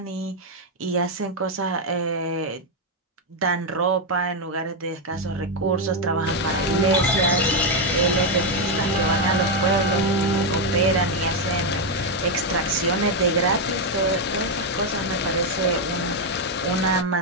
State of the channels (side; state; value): both; normal; correlation 0.03